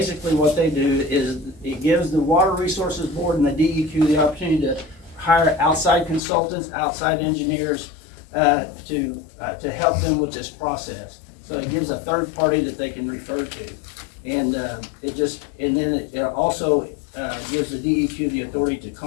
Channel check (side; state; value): right; drops out; at 6.2 s